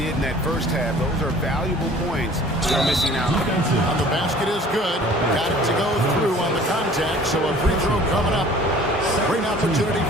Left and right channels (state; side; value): normal; both; correlation 0.49